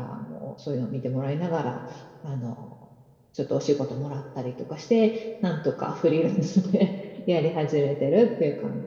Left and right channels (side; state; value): both; identical; correlation 1.00